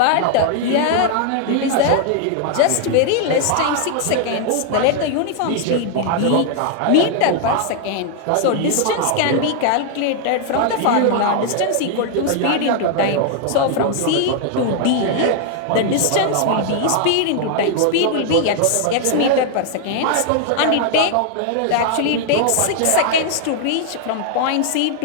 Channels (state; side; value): different; both; correlation 0.00